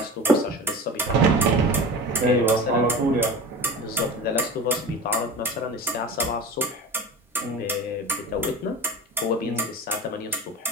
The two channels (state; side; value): normal; both; correlation 0.32